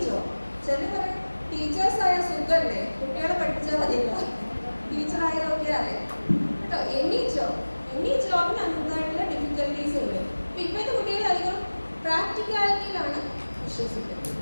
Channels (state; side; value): inverted; both; correlation -1.00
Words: ജോബ് ചില പറയും ടീച്ചേഴ്സായ സുഖല്ലേ, കുട്ടികളെ പഠിപ്പിച്ചാൽ മതിയില്ല, ടീച്ചറായതൊക്കെ അറിയാം കേട്ടോ. എനി ജോബിന് അതിൻ്റെതായിട്ടുള്ള ഡിഫിക്കൽട്ടീസ് ഉണ്ട്. ഇപ്പോഴത്തെ കുട്ടികൾ അധികം പ്രാക്ടിക്കാലിറ്റിയിലാണ് വിശ്വസിക്കുന്നത്.